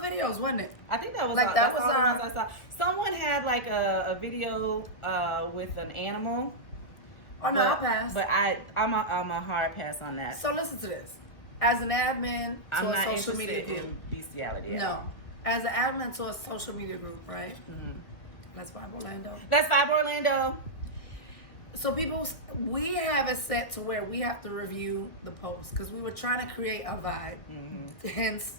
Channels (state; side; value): late; right; 1.6 ms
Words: wasn't it? I think that was like all, that was all the ones I saw. Someone had like a video with an animal. Oh no, I'll pass. But I'm a hard pass on that. So listen to this. As an admin to a social media group, bestiality. No, as an admin to a social media group, right? Mm-hmm. Let's Vibe Orlando. Let's Vibe Orlando. So we have it set to where we have to review the post because we were trying to create a vibe. Mm-hmm. Hence,